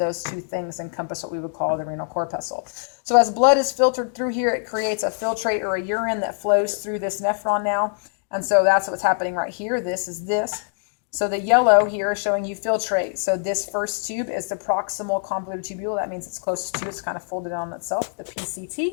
2 things encompass what we would call the renal corpuscle. So as blood is filtered through here, it creates a filtrate or a urine that flows through this nephron now. And so that's what's happening right here. This is this. So the yellow here is showing you filtrate. So this first tube is the proximal convoluted tubule. That means it's closest to, it's kind of folded on itself, the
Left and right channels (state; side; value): silent; right; digital silence